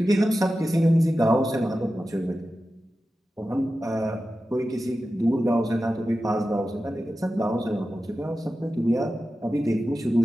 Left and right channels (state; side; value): normal; both; correlation 0.93